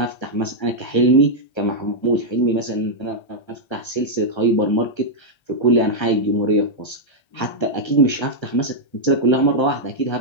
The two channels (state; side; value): late; right; 1.3 ms